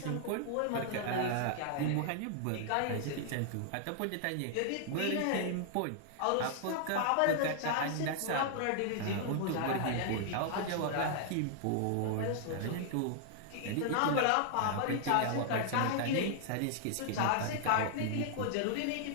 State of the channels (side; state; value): both; different; correlation 0.00